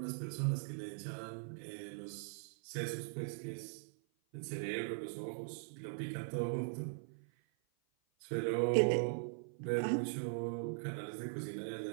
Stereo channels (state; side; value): silent; left; 51 dB below the other